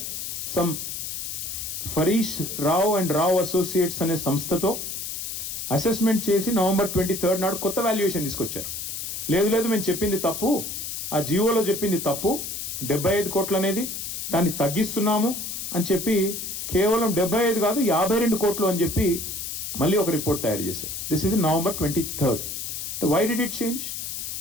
some ఫరీష్ Rao and Rao associates అనే సంస్థతో అసెస్మెంట్ చేసి November 23rd నాడు కొత్త వాల్యుయేషన్ తీసుకొచ్చారు. లేదు మేము చెప్పింది తప్పు, ఆ జియోలో చెప్పింది తప్పు, 75 కోట్లు అనేది దాన్ని తగ్గిస్తున్నాము అని చెప్పి కేవలం 75 కాదు 52 కోట్లు అని చెప్పి మళ్ళీ ఒక రిపోర్ట్ తయారు చేశారు. This is November 23rd. Why did it change?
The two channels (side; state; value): left; noise; hiss, 5 dB below the sound